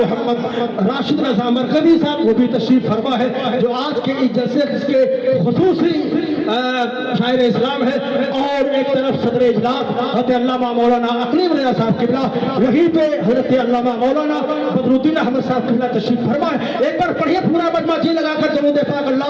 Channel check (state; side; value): identical; both; correlation 1.00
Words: راشد رضا مرکزی صاحب وہ بھی تشریف فرما ہے، جو آج کے اس جلسے کے خصوصی شاعر اسلام ہے، اور ایک طرف صدر اجلاس حضرت علامہ مولانا اقلیم رضا صاحب قبلہ، وہیں پہ حضرت علامہ مولانا بدر الدین احمد صاحب قبلہ تشریف فرما ہے۔ ایک بار پڑھیے پورا مجمع جی لگا کر درود پاک